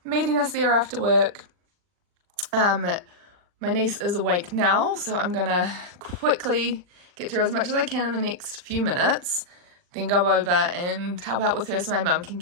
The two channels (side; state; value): left; late; 40 ms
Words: meeting us there after work. My niece is awake now, so I'm gonna quickly get through as much as I can in the next few minutes, then go over and help out with her so my mum can